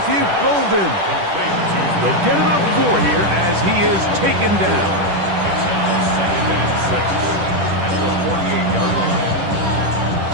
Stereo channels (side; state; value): left; late; 10 ms